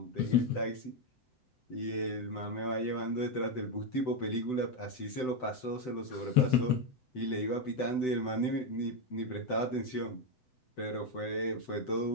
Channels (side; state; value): right; late; 7.9 ms